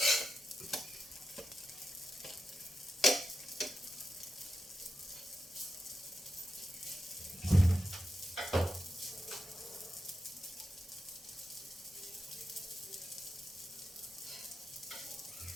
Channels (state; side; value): normal; both; correlation 0.88